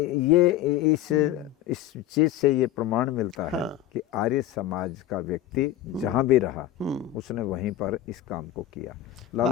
इस चीज से ये प्रमाण मिलता है कि आर्य समाज का व्यक्ति जहाँ भी रहा उसने वहीं पर इस काम को किया।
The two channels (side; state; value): right; quieter; 12.5 dB